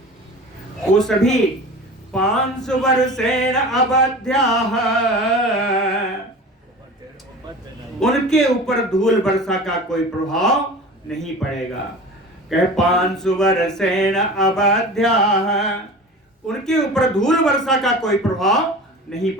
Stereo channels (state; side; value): normal; both; correlation 0.36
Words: वो सभी 500 वर्षेण अवध्याः, उनके ऊपर धूल वर्षा का कोई प्रभाव नहीं पड़ेगा। कहे 500 वर्षेण अवध्याः, उनके ऊपर धूल वर्षा का कोई प्रभाव नहीं